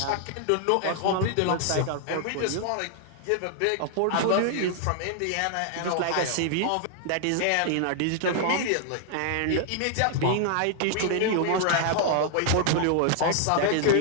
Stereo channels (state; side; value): different; both; correlation 0.00